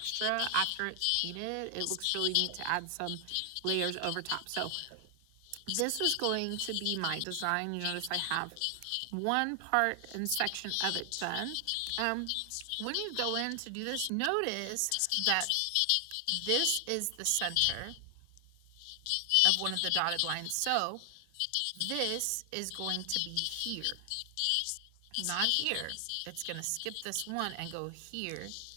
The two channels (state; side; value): different; both; correlation 0.00